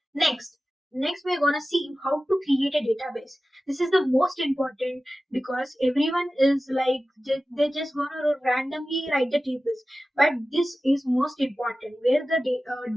Next, we're gonna see how to create a database. This is the most important because everyone is like they're just gonna randomly write the tables, but this is most important where the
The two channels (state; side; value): normal; both; correlation 0.95